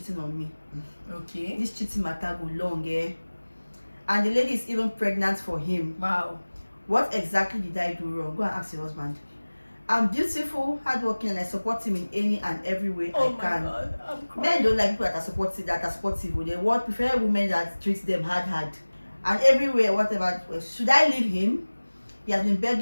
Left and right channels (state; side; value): inverted; both; correlation -1.00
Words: on me. Okay. This cheating matter go long, eh? And the lady is even pregnant for him. Wow. What exactly did I do wrong? Go and ask your husband. I'm beautiful, hardworking, and I support him in any and every way I Oh my can. god, I'm Men crying. don't like people that are supportive. They want prefer women that treat them hard. And everywhere, whatever. Should I leave him? He has been